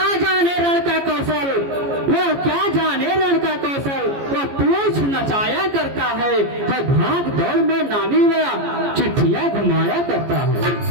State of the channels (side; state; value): left; late; 14 ms